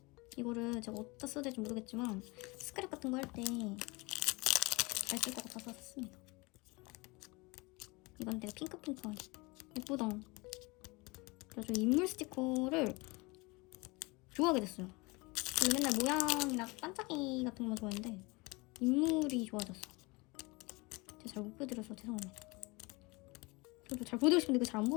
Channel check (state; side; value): quieter; right; 25.5 dB